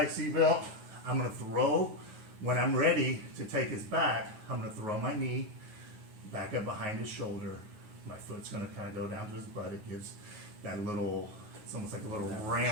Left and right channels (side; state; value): left; late; 9.4 ms